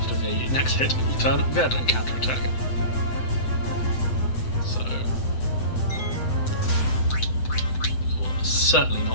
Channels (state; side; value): late; right; 7.9 ms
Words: the next hit, it will turn red and counterattack. So, it will certainly